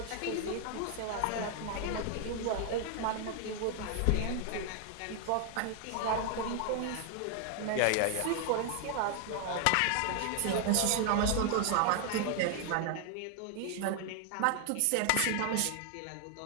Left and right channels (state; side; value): different; both; correlation 0.00